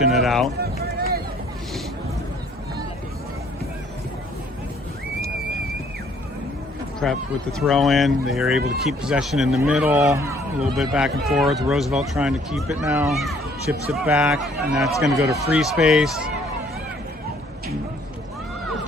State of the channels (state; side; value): normal; both; correlation 0.61